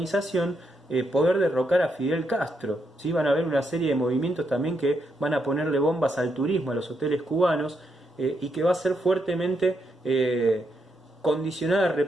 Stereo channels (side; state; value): both; normal; correlation 0.80